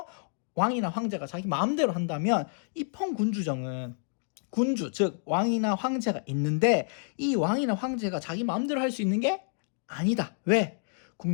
왕이나 황제가 자기 마음대로 한다면 입헌군주정은 군주, 즉 왕이나 황제가 있는데 이 왕이나 황제가 자기 마음대로 할 수 있는 게 아니다. 왜?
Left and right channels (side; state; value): right; silent; digital silence